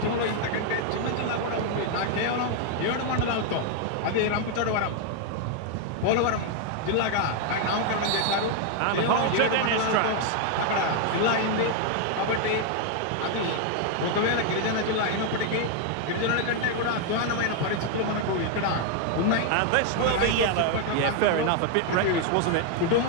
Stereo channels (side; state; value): both; different; correlation 0.00